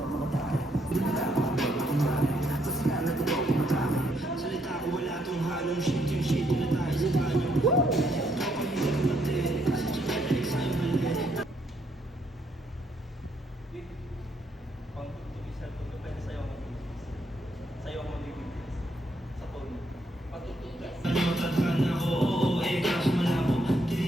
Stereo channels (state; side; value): normal; both; correlation 0.73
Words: mga take. Dinala ako ako mami. Kasi kaya totoo kumatake. Salita ko wala tong halong shit. Yung shit na tayo sa banyo.